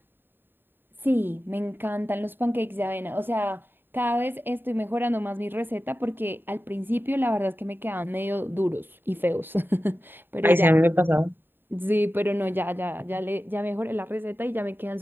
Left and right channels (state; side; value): late; left; 0.097 ms